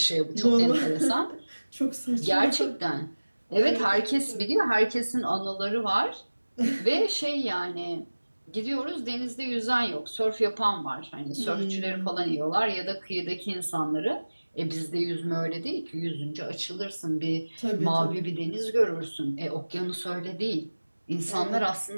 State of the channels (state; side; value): inverted; both; correlation -1.00